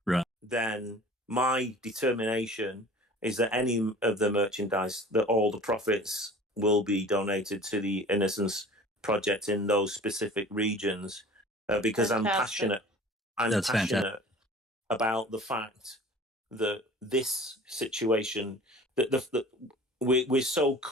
right, then my determination is that any of the merchandise, that all the profits will be donated to the Innocence Project in those specific regions, because Fantastic. I'm passionate about the fact that this situation, that we're so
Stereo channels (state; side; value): normal; both; correlation 0.44